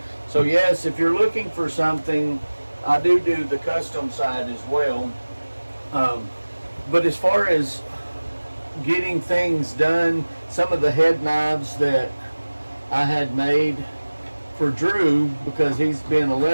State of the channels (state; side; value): inverted; both; correlation -1.00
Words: So yes, if you're looking for something, I do the custom side as well. But as far as getting things done, some of the head knives that I had made for Drew, because he's been a